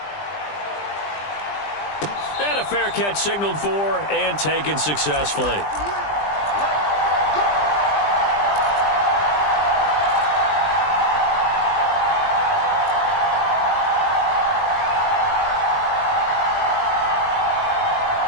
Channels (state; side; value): late; right; 20 ms